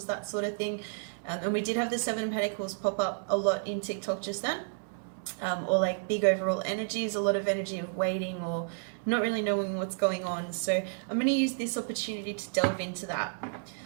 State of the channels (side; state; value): left; silent; 57 dB below the other